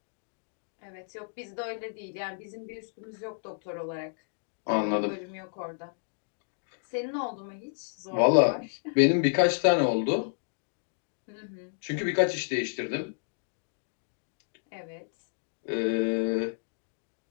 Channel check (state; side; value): silent; right; digital silence